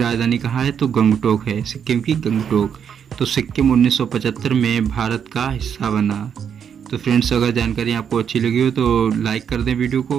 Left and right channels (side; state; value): left; quieter; 7.8 dB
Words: कहाँ है तो गंगटोक है, सिक्किम की गंगटोक। तो सिक्किम 1975 में भारत का हिस्सा बना। तो फ्रेंड्स, अगर जानकारी आपको अच्छी लगी हो तो लाइक कर दें वीडियो